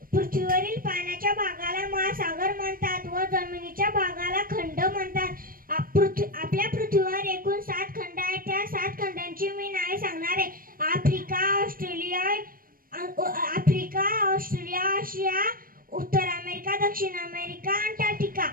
पृथ्वीवरील पाण्याच्या भागाला महासागर म्हणतात व जमिनीच्या भागाला खंड म्हणतात. आपल्या पृथ्वीवर एकूण 7 खंड आहेत. त्या 7 खंडांची मी नावे सांगणार आहे. आफ्रिका, ऑस्ट्रेलिया, आशिया, उत्तर अमेरिका, दक्षिण अमेरिका, अंटार्क्टिका.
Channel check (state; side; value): late; left; 0.41 ms